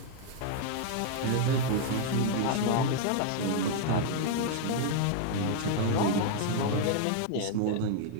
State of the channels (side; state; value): both; different; correlation 0.00